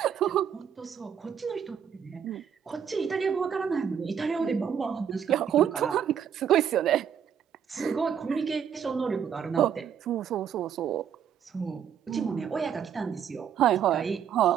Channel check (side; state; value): left; quieter; 8.2 dB